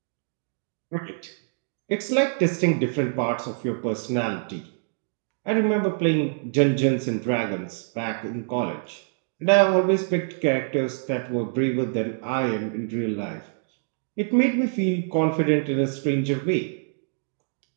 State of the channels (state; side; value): silent; left; digital silence